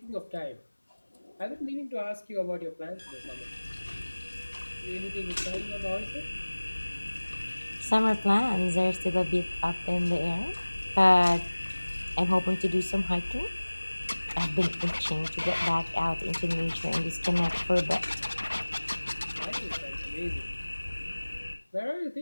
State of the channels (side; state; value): both; inverted; correlation -1.00